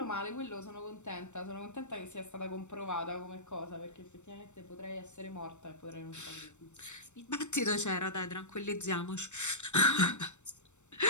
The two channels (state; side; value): late; right; 0.84 ms